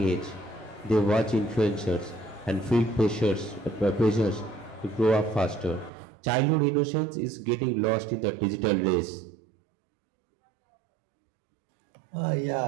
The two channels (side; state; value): left; drops out; at 5.9 s